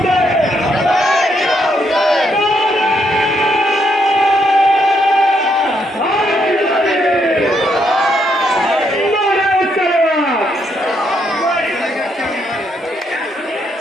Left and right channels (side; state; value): both; normal; correlation 0.76